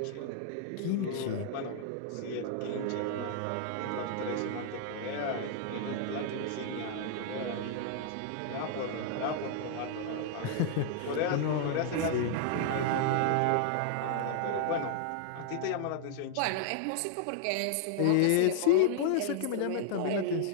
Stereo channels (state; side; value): different; both; correlation -0.01